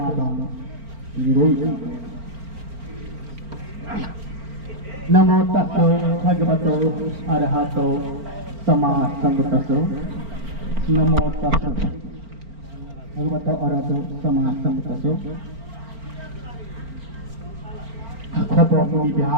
Nirogi Namo Tassa Bhagavato Arahato Samma Sambuddhassa Namo Tassa Bhagavato Arahato Samma Sambuddhassa Khopo Muni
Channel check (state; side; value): late; left; 4.4 ms